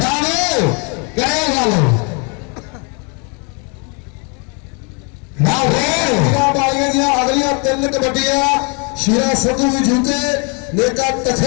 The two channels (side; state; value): right; quieter; 34.8 dB